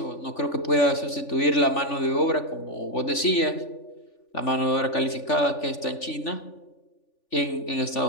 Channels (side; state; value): right; late; 3.4 ms